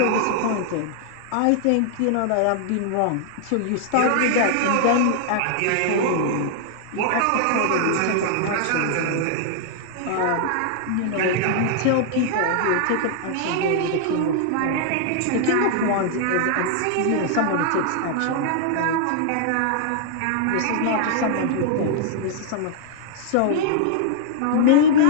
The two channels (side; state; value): both; different; correlation -0.01